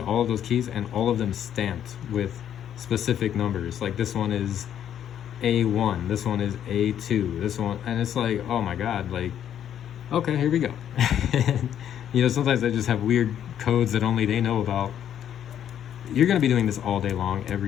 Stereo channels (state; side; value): quieter; right; 10.0 dB